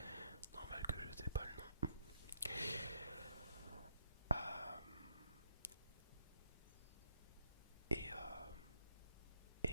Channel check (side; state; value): both; inverted; correlation -0.73